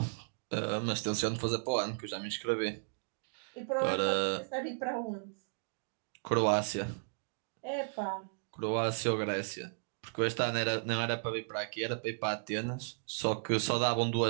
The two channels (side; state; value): left; silent; digital silence